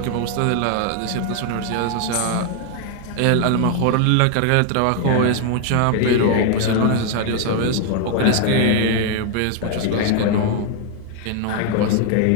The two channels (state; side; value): different; both; correlation 0.00